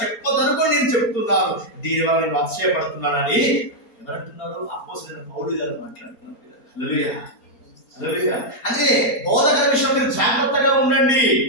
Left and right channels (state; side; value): late; right; 4.3 ms